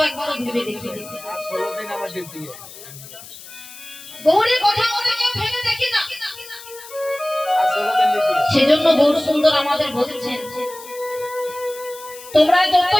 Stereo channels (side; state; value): left; noise; hiss, 16 dB below the sound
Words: একবারও ভেবে দেখি, গৌরের কথা আমরা কেউ ভেবে দেখি না। সেজন্য গৌর সুন্দর আমাদের বলছেন তোমরা